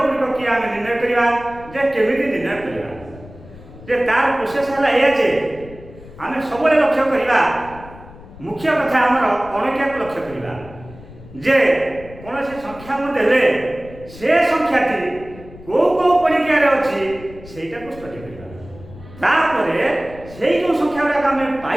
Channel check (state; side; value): noise; left; rumble, 18 dB below the sound